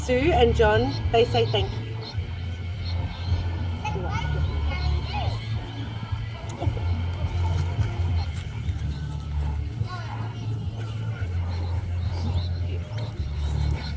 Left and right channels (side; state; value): both; identical; correlation 1.00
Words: and John, they say thank you.